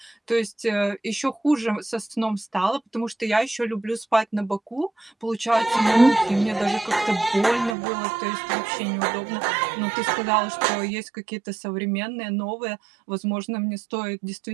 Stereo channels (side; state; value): left; drops out; at 7.8 s